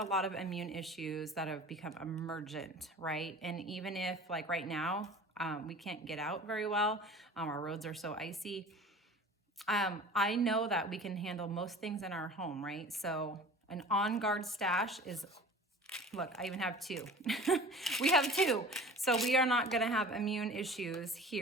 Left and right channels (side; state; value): both; normal; correlation 0.41